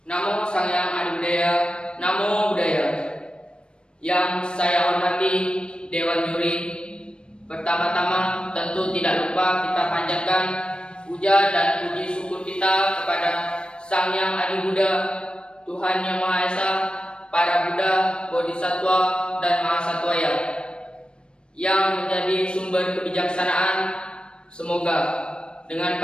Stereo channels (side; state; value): right; late; 0.055 ms